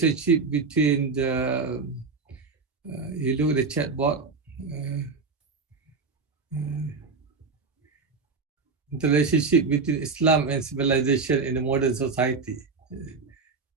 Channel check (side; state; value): left; quieter; 4.6 dB